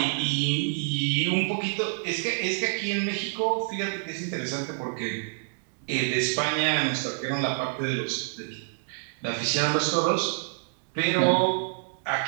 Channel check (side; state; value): left; silent; digital silence